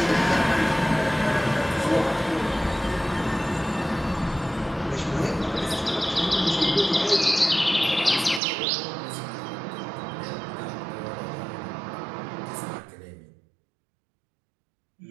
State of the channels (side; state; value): left; drops out; at 8.4 s